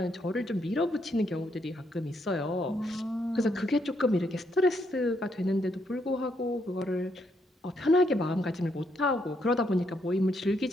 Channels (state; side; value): normal; both; correlation 0.76